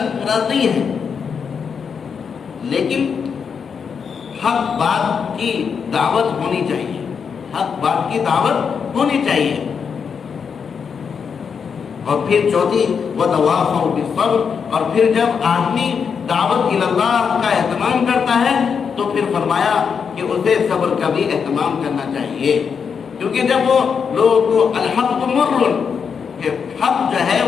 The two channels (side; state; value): right; quieter; 6.4 dB